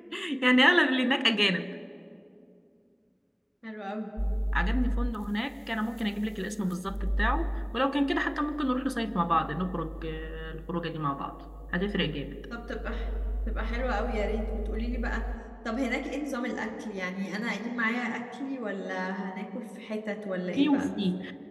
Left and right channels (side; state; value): both; identical; correlation 1.00